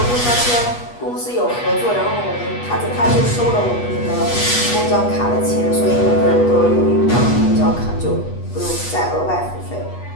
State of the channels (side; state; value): right; late; 8.3 ms